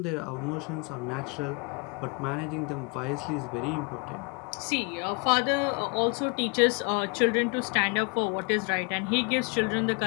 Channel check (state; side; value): quieter; right; 32.9 dB